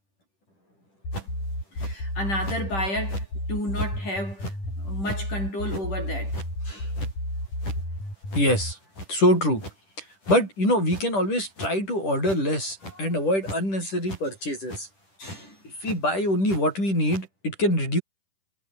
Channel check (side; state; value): right; late; 10 ms